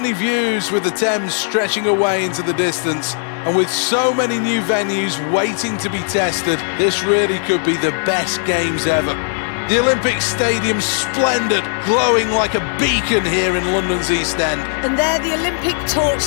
views with the Thames stretching away into the distance. And with so many new venues waiting to be tested, this really could be the best games ever. The Olympic Stadium's splendid, glowing like a beacon here in London's East End. And there, the Olympic torch,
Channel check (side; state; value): right; silent; digital silence